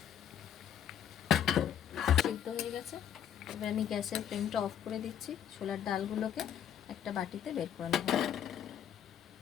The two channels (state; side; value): quieter; right; 9.6 dB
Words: সিদ্ধ হয়ে গেছে, এবার আমি গ্যাসের ফ্লেমটা অফ করে দিচ্ছি। ছোলার ডালগুলোকে একটা বাটিতে বের করে নেব।